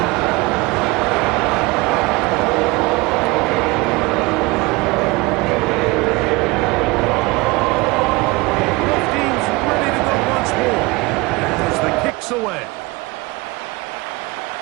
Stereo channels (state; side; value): quieter; left; 23.8 dB